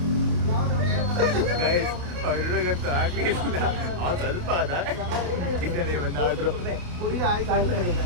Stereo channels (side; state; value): left; late; 28 ms